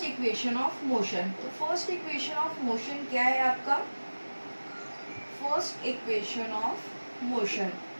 इक्वेशन ऑफ मोशन। तो फर्स्ट इक्वेशन ऑफ मोशन क्या है आपका, first equation of motion,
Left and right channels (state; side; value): inverted; both; correlation -1.00